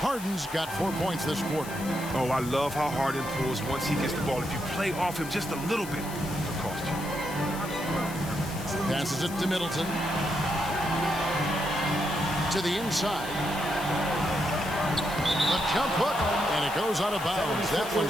Harden's got 4 points this quarter. Oh, I love how Harden pulls once he gets the ball. If you play off him just a little bit, it'll cost you. Passes it to Middleton. To the inside. The jump hook, and it goes out of bounds. That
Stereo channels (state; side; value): noise; left; hiss, 13 dB below the sound